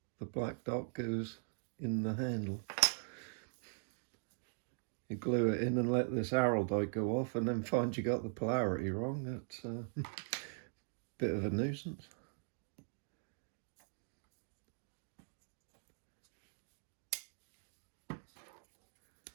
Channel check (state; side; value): silent; left; digital silence